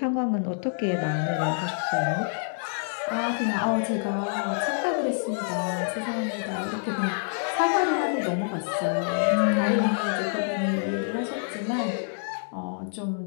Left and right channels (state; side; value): silent; right; digital silence